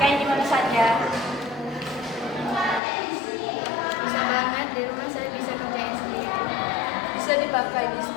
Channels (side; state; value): right; drops out; at 2.8 s